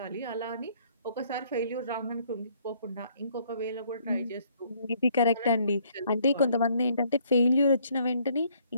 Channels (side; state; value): both; inverted; correlation -0.65